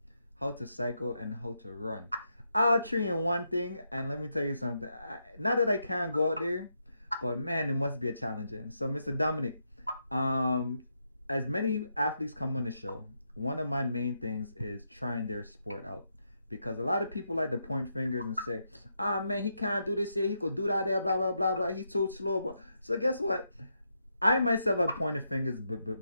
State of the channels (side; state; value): both; inverted; correlation -0.82